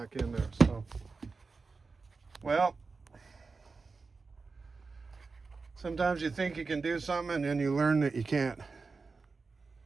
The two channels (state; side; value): quieter; left; 4.3 dB